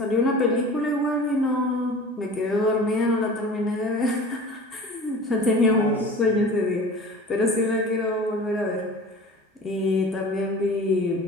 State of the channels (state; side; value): normal; both; correlation 0.40